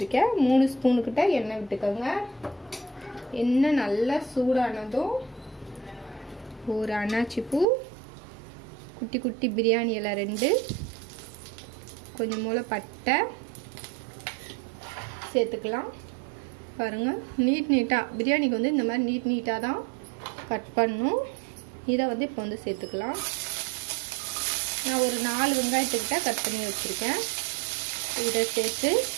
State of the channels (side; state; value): left; drops out; at 7.7 s